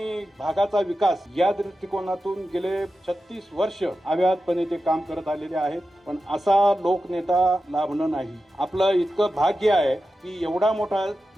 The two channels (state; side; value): normal; both; correlation 0.92